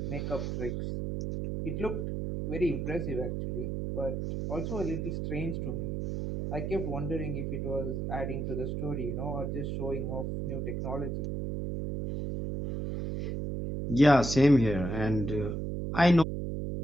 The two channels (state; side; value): noise; right; hum, 2 dB below the sound